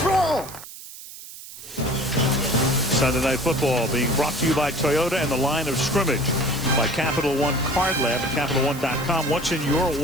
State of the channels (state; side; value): noise; right; hiss, 15 dB below the sound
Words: roll. Sunday Night Football being brought to you by Toyota and the line of scrimmage by Capital One Card Lab at CapitalOne.com. What's in your